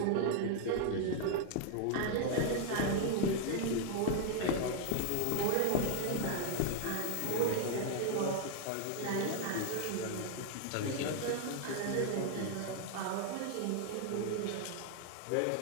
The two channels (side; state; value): both; different; correlation 0.00